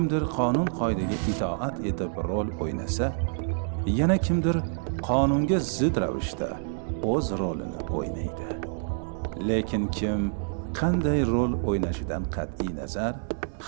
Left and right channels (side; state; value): left; silent; digital silence